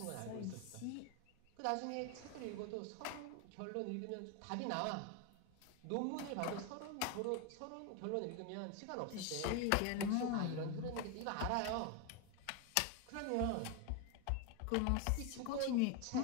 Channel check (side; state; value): both; different; correlation 0.02